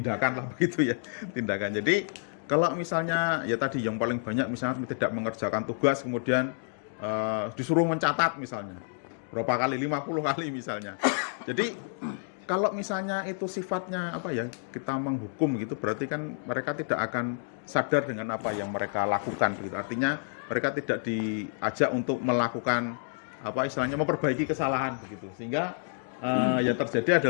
lah begitu ya, tindakan. Jadi kalau misalnya ya tadi yang paling banyak misalnya tidak mengerjakan tugas kemudian disuruh mencatat misalnya berapa kali, 50 kali misalnya. Jadi kalau misalnya itu sifatnya apa ya, kita menghukum gitu, berarti kan mereka tidak akan sadar dengan apa yang mereka lakukan begitu. Artinya mereka tidak diajak untuk melakukan apa istilahnya memperbaiki kesalahan begitu. Sehingga yang terjadi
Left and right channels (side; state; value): right; silent; digital silence